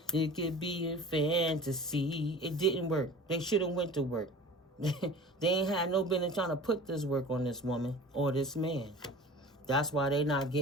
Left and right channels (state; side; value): normal; both; correlation 0.40